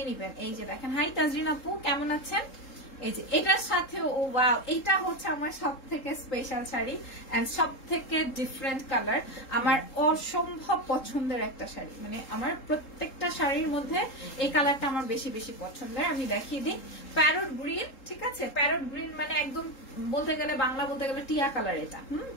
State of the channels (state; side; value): late; right; 3.7 ms